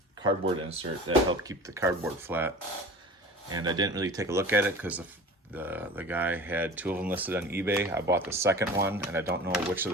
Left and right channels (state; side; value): normal; both; correlation 0.38